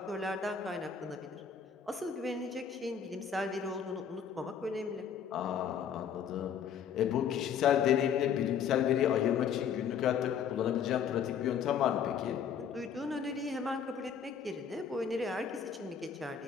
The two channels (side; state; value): right; quieter; 7.5 dB